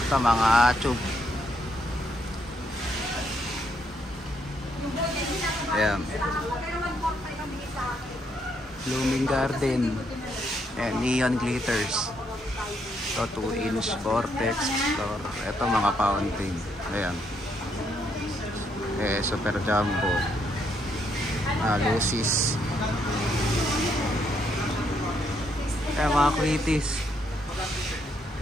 Ito mga tube. Ayan, Blooming Garden, and Neon Glitters. Ito 2-inch Vortex. Ito mga fountain. Ayan, Super Jumbo, Lucis. Ayan, mga Quitis.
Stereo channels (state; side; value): normal; both; correlation 0.74